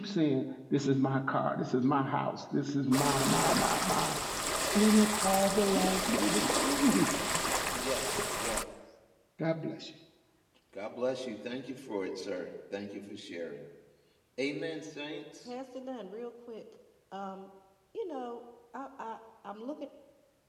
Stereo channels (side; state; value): both; identical; correlation 1.00